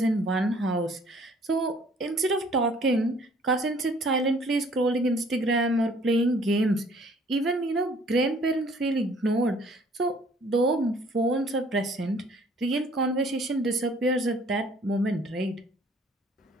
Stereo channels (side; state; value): both; normal; correlation 0.57